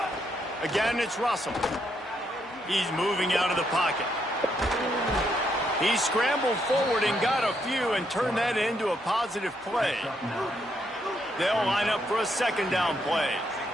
Again, it's Russell. He's moving out of the pocket. He scrambled forward and got a few and turned that into a positive play. They'll line up for a 2nd down play.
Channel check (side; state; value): both; normal; correlation 0.76